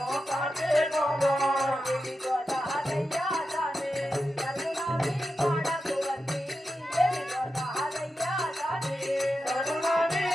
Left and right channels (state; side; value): normal; both; correlation 0.90